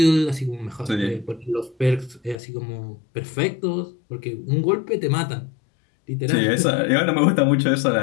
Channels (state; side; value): drops out; right; at 2.4 s